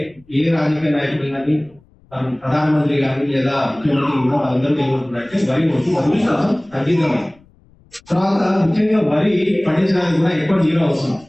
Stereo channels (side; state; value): left; noise; rumble, 30 dB below the sound